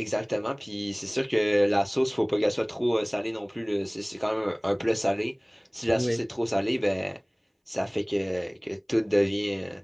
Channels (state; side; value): identical; both; correlation 1.00